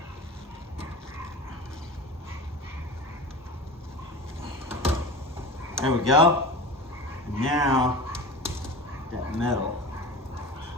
There we go. Now, that metal.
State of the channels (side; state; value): both; normal; correlation 0.31